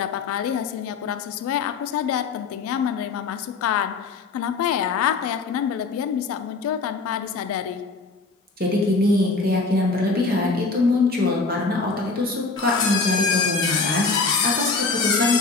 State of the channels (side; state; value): right; quieter; 4.1 dB